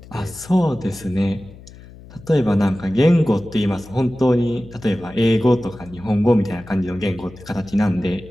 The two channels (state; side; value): noise; left; hum, 19 dB below the sound